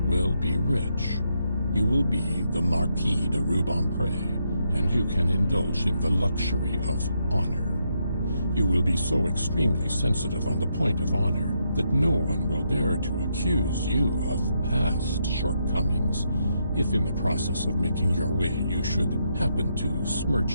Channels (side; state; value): both; inverted; correlation -0.79